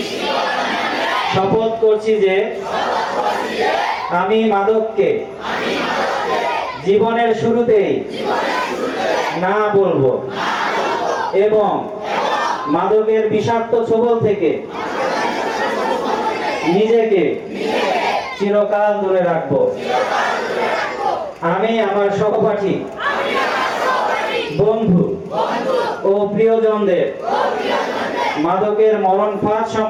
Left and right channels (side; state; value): both; identical; correlation 1.00